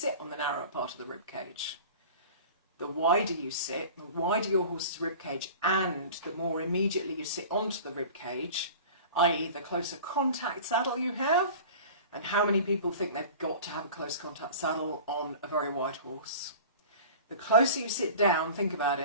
on the narrower part of the rib cage. The wider you sit, the wider your horse's rib cage, and the more immediately you sit onto the rib cage, i.e. the closer contact saddle you have. And how many people think they've got to have a close contact saddle on a very wide horse? The closer you sit down, think about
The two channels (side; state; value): both; inverted; correlation -0.39